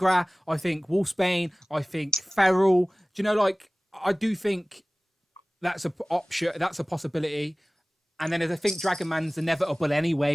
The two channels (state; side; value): normal; both; correlation 0.98